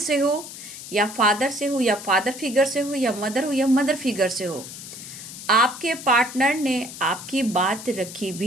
से हो या फादर से हो या फादर फिगर से हो या मदर फिगर से हो, आपके पार्टनर ने आपकी बात रखी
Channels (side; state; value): left; noise; hiss, 12 dB below the sound